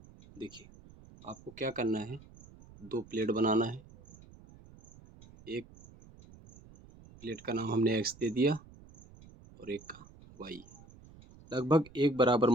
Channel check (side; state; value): right; noise; rumble, 22 dB below the sound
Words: देखिए, आपको क्या करना है, दो प्लेट बनाना है। एक प्लेट का नाम हमने x दे दिया और एक का y। लगभग एक बराबर